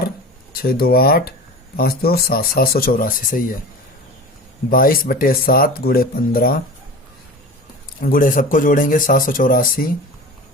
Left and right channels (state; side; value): normal; both; correlation 0.34